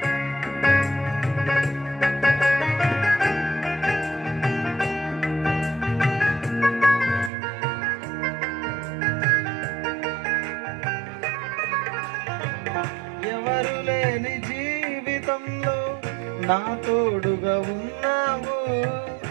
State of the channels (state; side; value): drops out; left; at 7.3 s